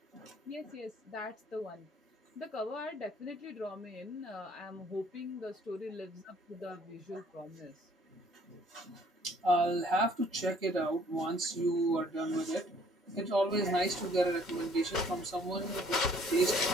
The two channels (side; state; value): both; normal; correlation 0.59